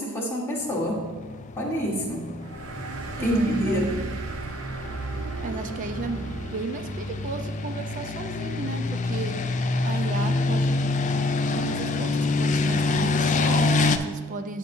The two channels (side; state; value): both; normal; correlation 0.62